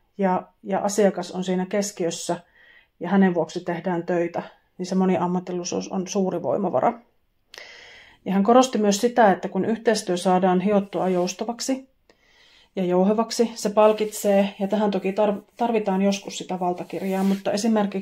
ja asiakas on siinä keskiössä ja hänen vuoksi tehdään töitä, niin se moniammatillisuus on suuri voimavara. Ja hän korosti myös sitä, että kun yhteistyö saadaan hiottua joustavaksi ja jouhevaksi, se palkitsee, ja tähän toki tarvitaan joskus sitä valtakirjaa, mutta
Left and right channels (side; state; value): both; identical; correlation 1.00